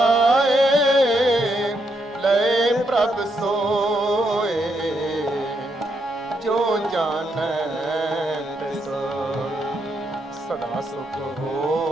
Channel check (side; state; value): both; normal; correlation 0.78